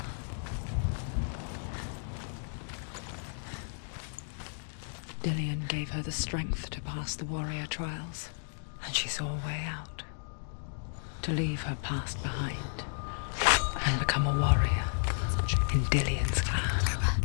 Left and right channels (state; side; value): silent; right; digital silence